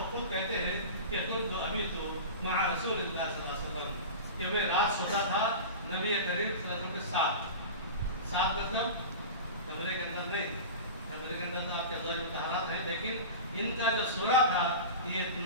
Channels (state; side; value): inverted; both; correlation -0.30